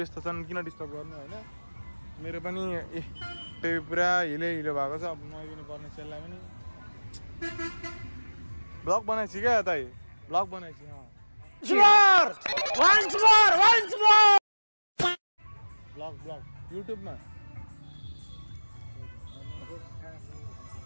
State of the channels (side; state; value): both; inverted; correlation -1.00